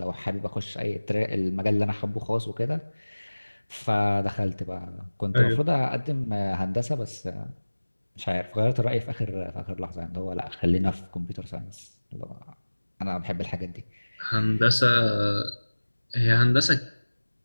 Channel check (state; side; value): inverted; both; correlation -1.00